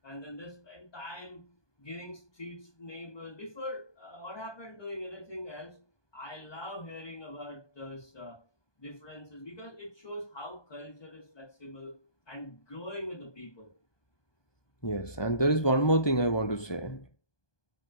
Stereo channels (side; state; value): right; late; 1.2 ms